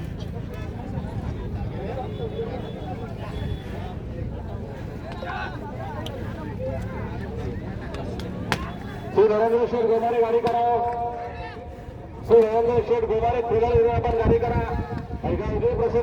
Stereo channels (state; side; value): identical; both; correlation 1.00